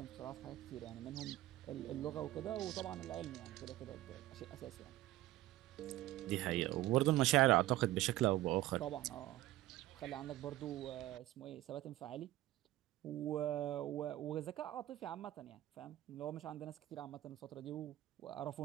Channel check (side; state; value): left; quieter; 16.0 dB